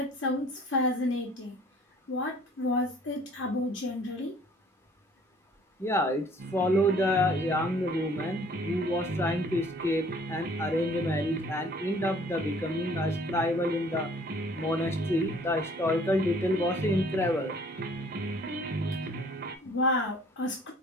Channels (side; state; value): both; normal; correlation 0.55